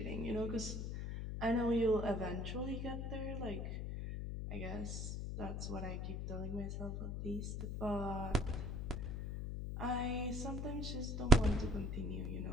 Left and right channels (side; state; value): left; noise; hum, 3 dB below the sound